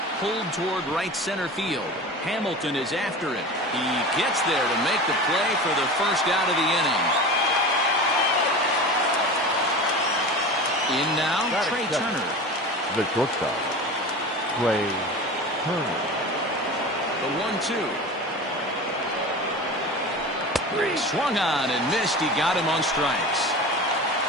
Pulled toward right center field. Hamilton is after it. He gets there to make the play for the first out of the inning. In now, Trey Turner. The shortstop, Trey Turner. The 1-2. He swung on and missed. He got him on strikes.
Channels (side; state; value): both; normal; correlation 0.32